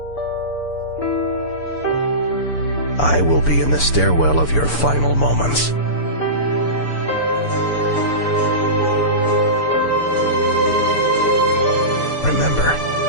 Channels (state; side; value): late; right; 6.9 ms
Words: I will be in the stairwell of your final moments. Remember,